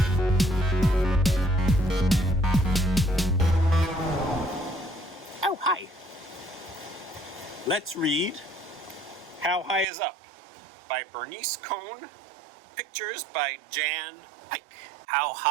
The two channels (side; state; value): left; drops out; at 9.9 s